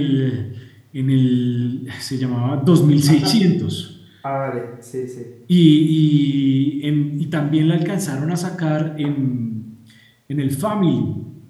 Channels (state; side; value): identical; both; correlation 1.00